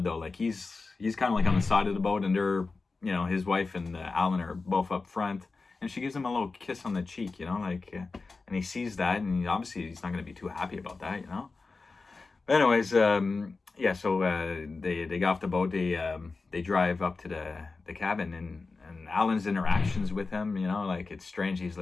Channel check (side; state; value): right; quieter; 4.0 dB